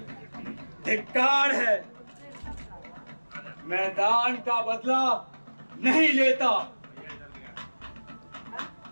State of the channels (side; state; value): both; inverted; correlation -1.00